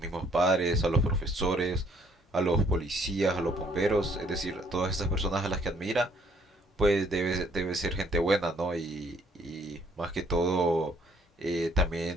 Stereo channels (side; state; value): both; normal; correlation 0.63